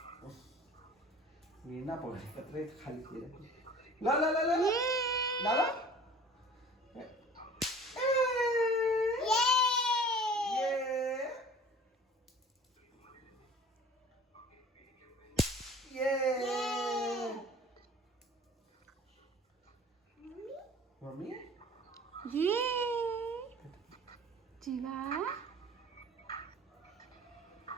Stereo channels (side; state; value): both; normal; correlation 0.46